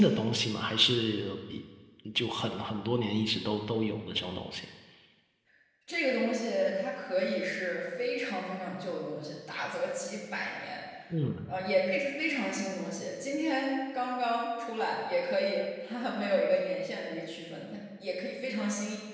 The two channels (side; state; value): both; identical; correlation 1.00